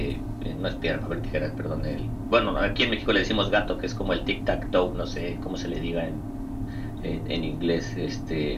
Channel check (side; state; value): both; identical; correlation 1.00